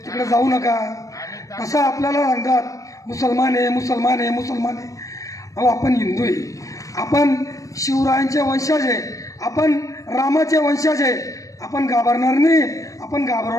तिकडे जाऊ नका, तसं आपल्याला सांगतात मुसलमान आहे, मुसलमान आहे, मुसलमान आहे. अहो, आपण हिंदू आहे, आपण शिवरायांचे वंशज आहे, आपण रामाचे वंशज आहे. आपण घाबरणार नाही, आपण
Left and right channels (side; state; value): right; late; 0.16 ms